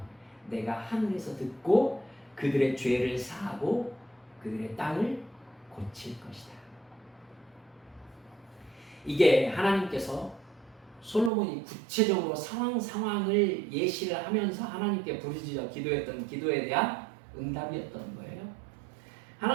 내가 하늘에서 듣고 그들의 죄를 사하고 그들의 땅을 고칠 것이다. 이게 하나님께서 솔로몬이 구체적으로 상황을 예시를 하면서 하나님께 부르짖어 기도했던 기도에 대한 응답이었던 거예요.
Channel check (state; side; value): drops out; left; at 11.3 s